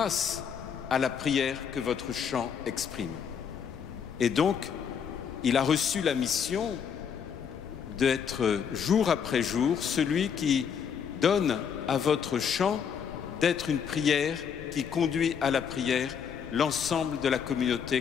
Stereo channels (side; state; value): right; quieter; 7.3 dB